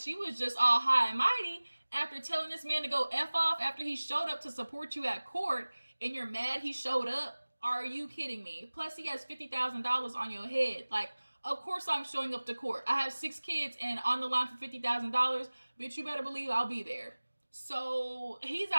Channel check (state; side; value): inverted; both; correlation -1.00